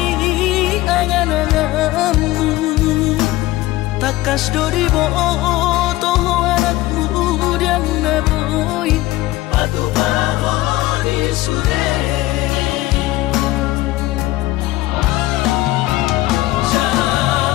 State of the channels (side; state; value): right; quieter; 17.3 dB